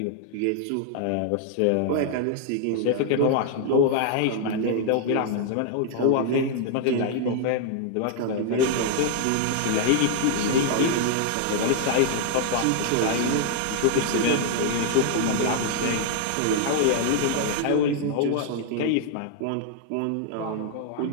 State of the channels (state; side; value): different; both; correlation 0.00